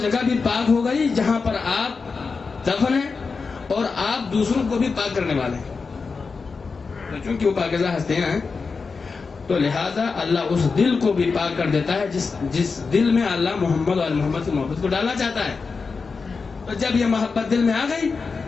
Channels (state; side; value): quieter; right; 4.7 dB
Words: بھی پاک ہو گئی جہاں پر آپ دفن ہیں اور آپ دوسروں کو بھی پاک کرنے والے ہیں، تو چونکہ وہ پاکیزہ ہستیاں ہیں تو لہٰذا اللہ اس دل کو بھی پاک کر دیتا ہے جس دل میں اللہ محمد اور محمد کی محبت کو ڈالنا چاہتا ہے۔ تو جب یہ محبت دل میں آ گئی،